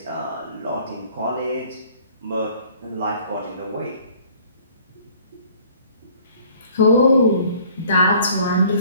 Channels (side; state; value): both; inverted; correlation -0.54